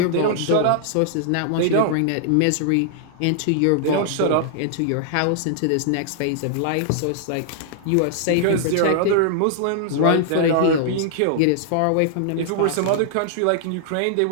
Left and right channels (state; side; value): different; both; correlation -0.01